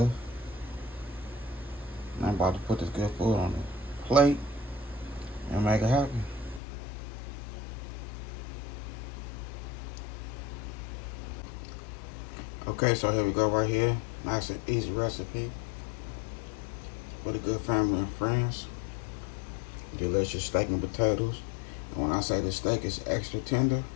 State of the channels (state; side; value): drops out; right; at 6.6 s